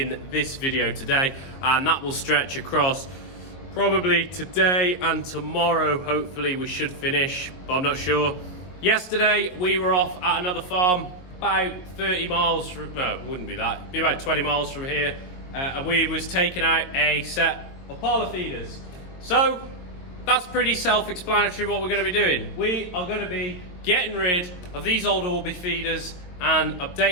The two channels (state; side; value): late; right; 22 ms